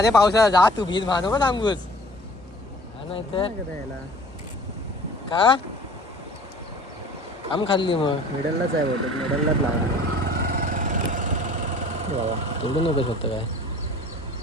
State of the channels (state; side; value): normal; both; correlation 0.48